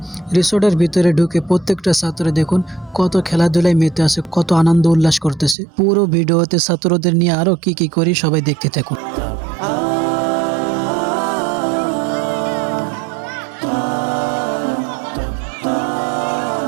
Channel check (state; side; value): drops out; left; at 5.6 s